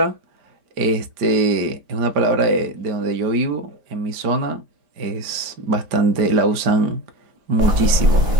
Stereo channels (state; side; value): late; left; 5.0 ms